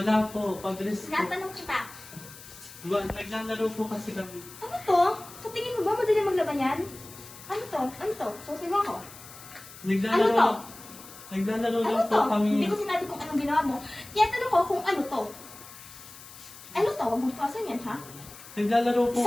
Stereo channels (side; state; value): left; noise; hiss, 17 dB below the sound